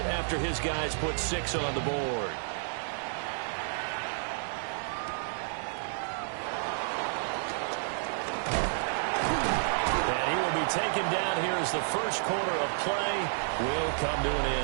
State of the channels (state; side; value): silent; left; digital silence